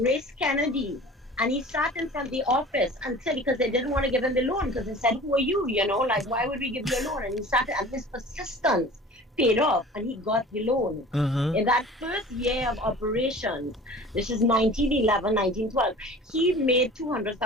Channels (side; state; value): both; normal; correlation 0.42